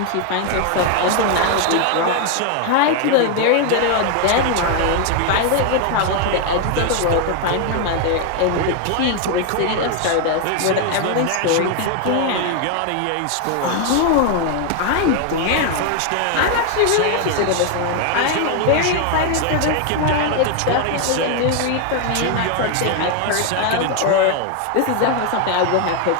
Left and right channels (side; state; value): both; different; correlation 0.01